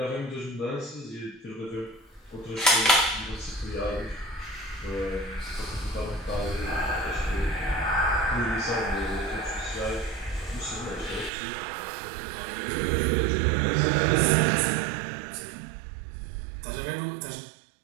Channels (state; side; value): drops out; left; at 11.3 s